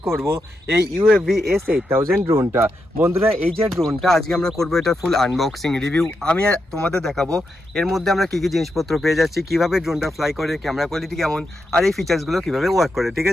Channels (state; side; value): normal; both; correlation 0.85